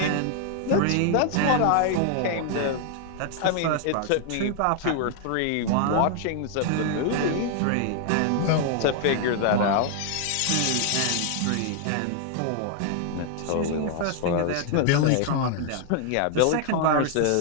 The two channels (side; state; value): both; different; correlation 0.00